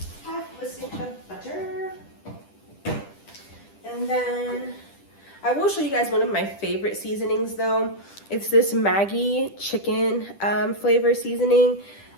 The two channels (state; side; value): late; right; 10 ms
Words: half a stick of butter. And then I will show you guys one of my favorite seasonings though. It's this Maggi chicken flavor seasoning.